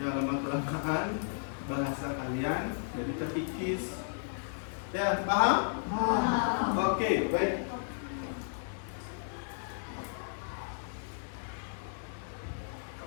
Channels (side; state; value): right; silent; digital silence